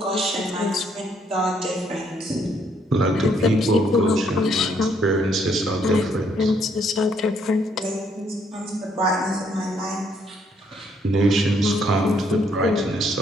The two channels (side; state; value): both; normal; correlation 0.69